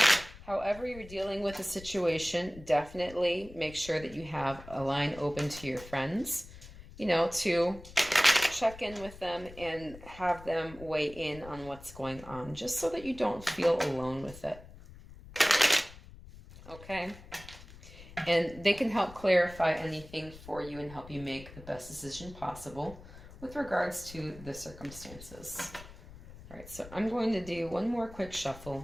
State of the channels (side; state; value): left; noise; rumble, 17 dB below the sound